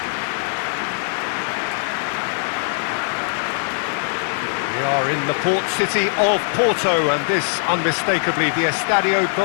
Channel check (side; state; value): right; silent; 61 dB below the other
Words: We are in the port city of Porto, and this unmistakably the Estadio